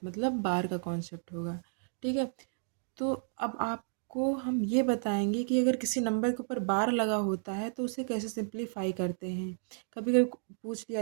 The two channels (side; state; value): left; silent; 56 dB below the other